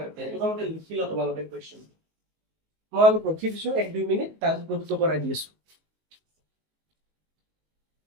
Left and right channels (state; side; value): late; left; 19 ms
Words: हैं। তোমালোকে লিখি ল তোমালোকে কোয়েশ্চন। মই অলপ ৰখি দিছো 1-2 মিনিট, তাৰপিছত প্ৰুফটো কৰাই দি আছো।